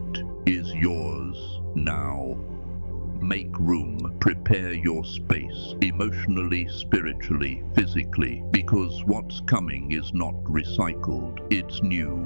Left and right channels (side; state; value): both; inverted; correlation -1.00